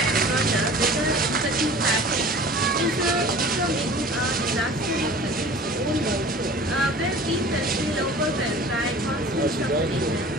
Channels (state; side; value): normal; both; correlation 0.43